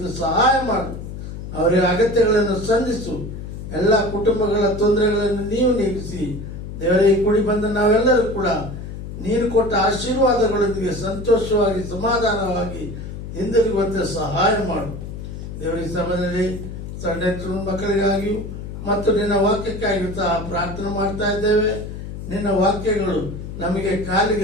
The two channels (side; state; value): left; noise; hum, 9 dB below the sound